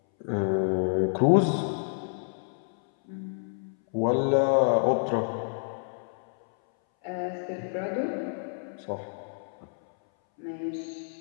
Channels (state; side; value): silent; right; 59 dB below the other